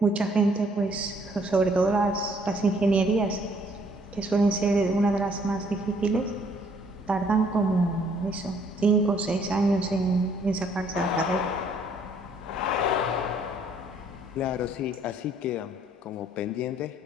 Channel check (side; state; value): both; normal; correlation 0.64